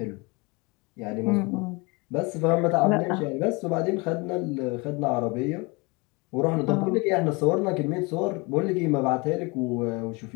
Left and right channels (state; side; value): quieter; right; 27.4 dB